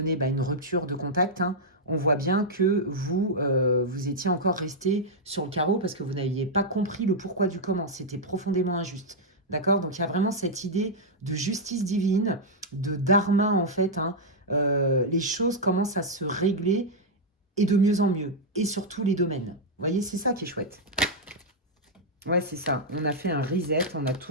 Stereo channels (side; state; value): both; normal; correlation -0.04